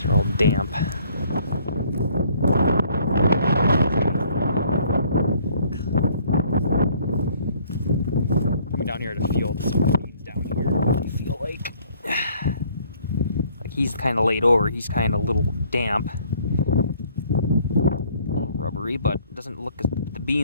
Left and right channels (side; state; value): both; inverted; correlation -0.60